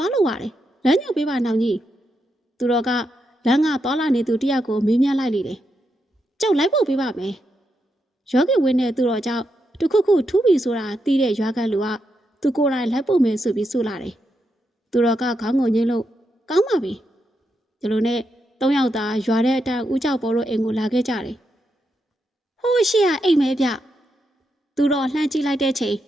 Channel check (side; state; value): both; normal; correlation 0.83